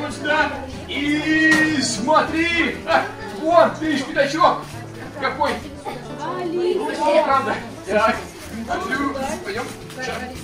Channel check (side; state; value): both; identical; correlation 1.00